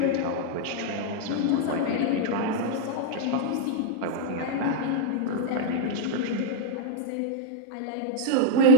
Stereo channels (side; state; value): both; different; correlation 0.00